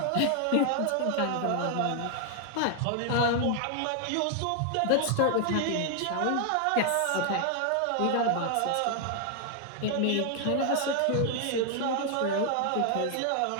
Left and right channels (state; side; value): different; both; correlation 0.00